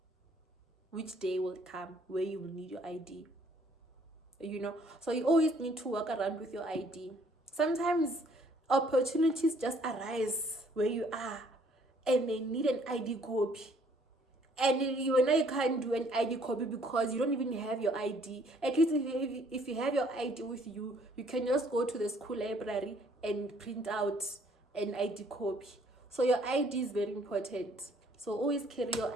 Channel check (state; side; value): normal; both; correlation 0.62